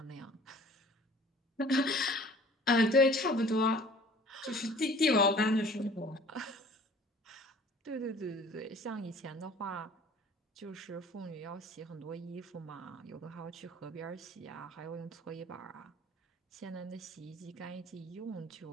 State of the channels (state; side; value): normal; both; correlation 0.49